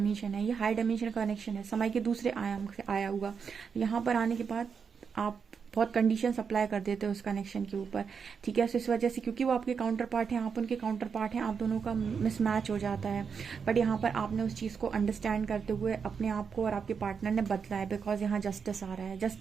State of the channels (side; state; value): left; quieter; 6.2 dB